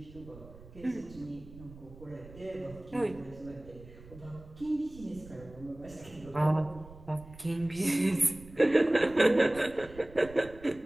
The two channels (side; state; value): right; noise; rumble, 19 dB below the sound